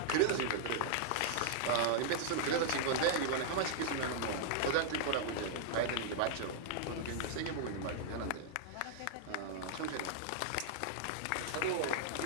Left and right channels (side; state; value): both; different; correlation -0.01